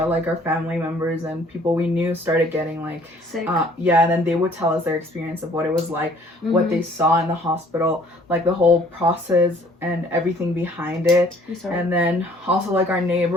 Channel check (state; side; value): normal; both; correlation 0.58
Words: like our family members and people we knew started getting like sick. Yeah, and then they would tell us their experience of what it was like, what they saw in the hospital, like the whole process and everything behind it. And then also like our